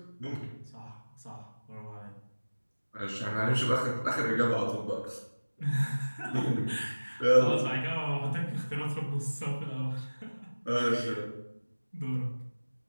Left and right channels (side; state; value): both; inverted; correlation -1.00